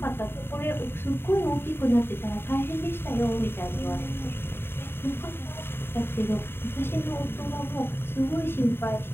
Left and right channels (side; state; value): right; late; 0.11 ms